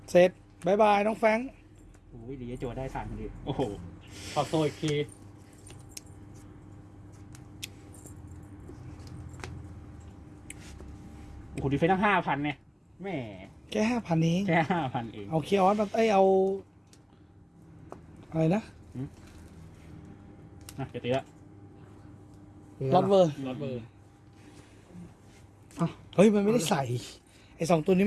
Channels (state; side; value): identical; both; correlation 1.00